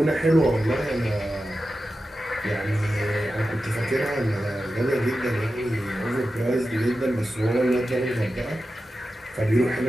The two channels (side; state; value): both; normal; correlation 0.92